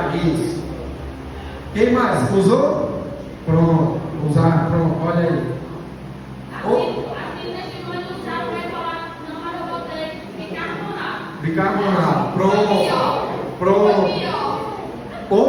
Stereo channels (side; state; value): both; identical; correlation 1.00